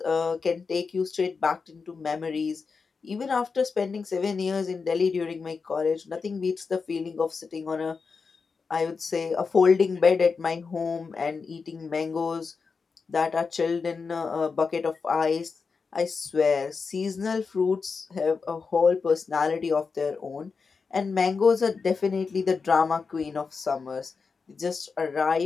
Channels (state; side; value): quieter; right; 5.0 dB